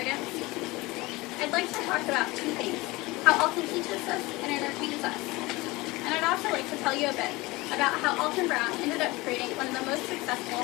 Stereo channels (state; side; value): quieter; right; 21.8 dB